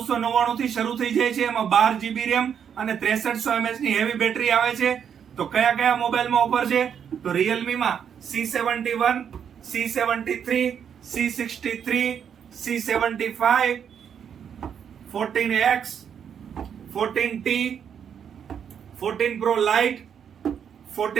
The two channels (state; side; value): quieter; left; 8.0 dB